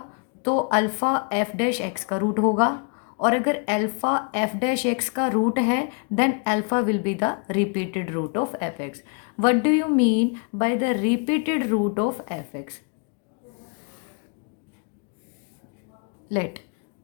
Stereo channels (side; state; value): right; quieter; 38.1 dB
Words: तो alpha f dash x का root होगा, और अगर alpha f dash x का रूट है then alpha will be the repeated root of f x. What do you mean by the repeated root of f x? Let